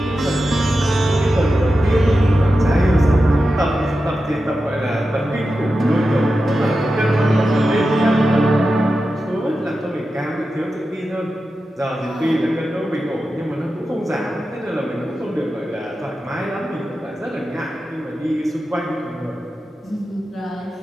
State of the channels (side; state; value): both; normal; correlation 0.91